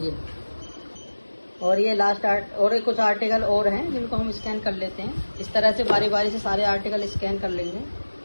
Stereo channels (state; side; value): inverted; both; correlation -1.00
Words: ये और ये लास्ट और कुछ आर्टिकल और हैं जिनको हम स्कैन कर लेते हैं। इस तरह से बारी बारी से सारे आर्टिकल स्कैन कर लेंगे।